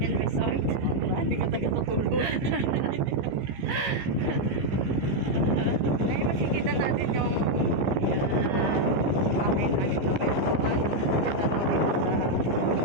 and Resort. Hindi ka taga-tutulog. Ngayon makikita natin yung bahay namin na meron. Kita mo dito sa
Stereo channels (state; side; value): late; left; 15 ms